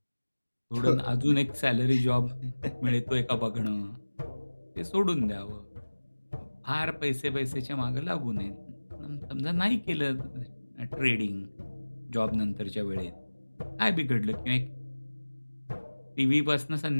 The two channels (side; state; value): both; inverted; correlation -1.00